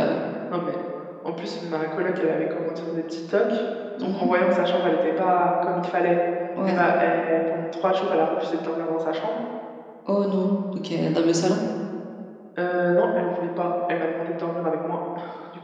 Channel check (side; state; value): both; identical; correlation 1.00